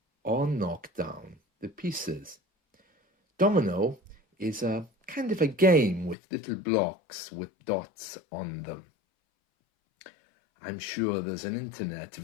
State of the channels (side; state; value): right; drops out; at 6.2 s